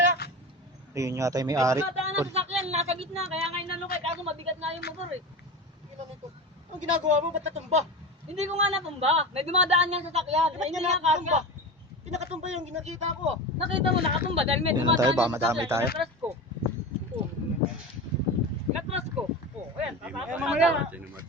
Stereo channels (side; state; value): both; normal; correlation 0.27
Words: Ayun yata yung may-ari. Dumadaan ang sasakyan, nasa gitna, kaya ngayon nalukay, kaso mabigat na yung motor eh. Tingnan nito. Anong ginagawa mo? Ba't natumba? Hindi ko nga natumba, may dumadaan yung sasakyan, Ba't hindi ka nga nakatumba? kasya. Pinakatumba yung ginakita ko. Nakita mo, nakatumba dahil may Ayun na dumadaan tayo, baka yung madamay sasakyan, tayo. inatras ko. Oh. Inatras ko. Oh, ayan, mamaya.